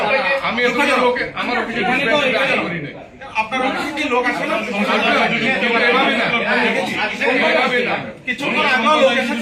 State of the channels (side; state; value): both; identical; correlation 1.00